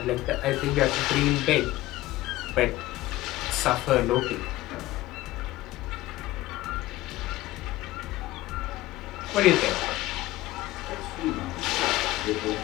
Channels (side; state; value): right; quieter; 17.1 dB